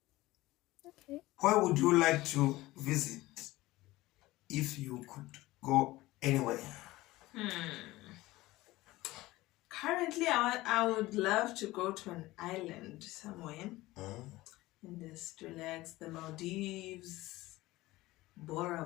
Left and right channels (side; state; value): right; quieter; 18.5 dB